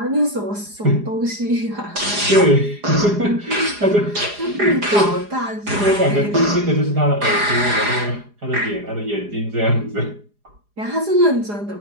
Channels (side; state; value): left; late; 4.9 ms